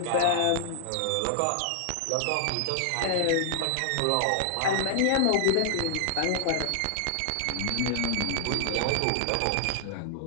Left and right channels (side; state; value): both; different; correlation 0.00